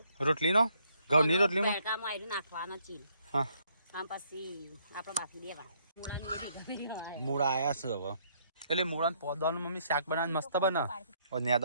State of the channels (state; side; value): inverted; both; correlation -0.69